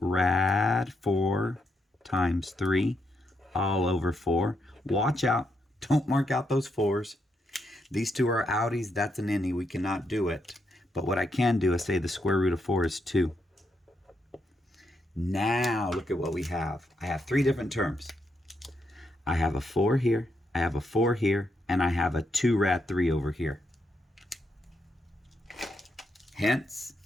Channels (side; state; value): both; normal; correlation 0.80